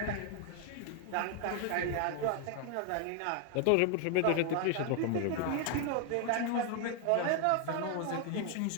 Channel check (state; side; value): different; both; correlation 0.00